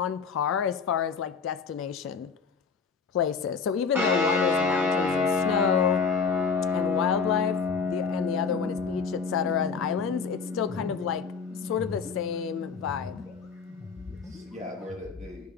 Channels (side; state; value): right; quieter; 5.4 dB